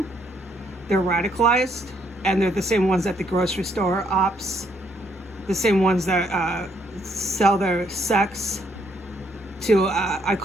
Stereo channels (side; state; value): both; normal; correlation 0.71